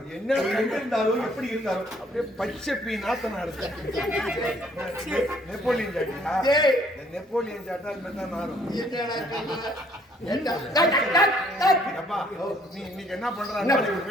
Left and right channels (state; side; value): normal; both; correlation 0.63